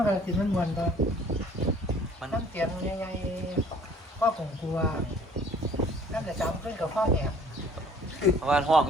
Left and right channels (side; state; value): both; normal; correlation 0.54